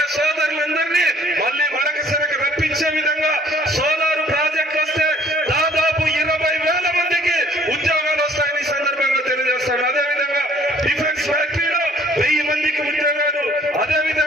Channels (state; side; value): normal; both; correlation 0.58